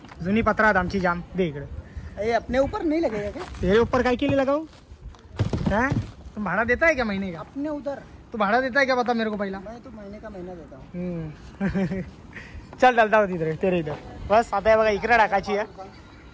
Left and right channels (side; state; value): both; identical; correlation 1.00